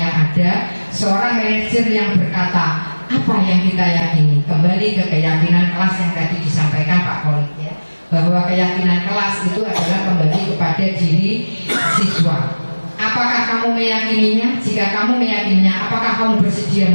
ada. Seorang manajer yang berkata, apa yang kita yakini? Kembali ke keyakinan kelas yang tadi disampaikan Pak Kolik ya, bahwa keyakinan kelas itu adalah kembali kepada diri siswa. Apakah kamu meyakininya? Jika kamu meyakininya, apakah kamu bersedia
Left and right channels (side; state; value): both; inverted; correlation -1.00